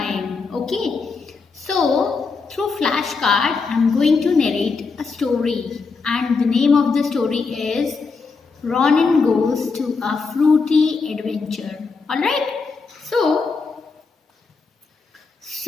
okay? So through flashcard I am going to narrate a story and the name of the story is Ronin Goes to a Fruity Adventure. Alright? So,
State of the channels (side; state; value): right; quieter; 4.6 dB